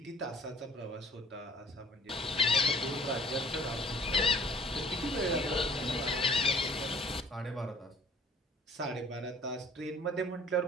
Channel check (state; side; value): normal; both; correlation 0.54